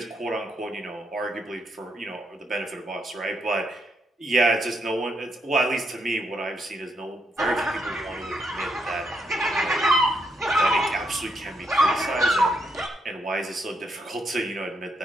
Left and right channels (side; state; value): both; normal; correlation 0.78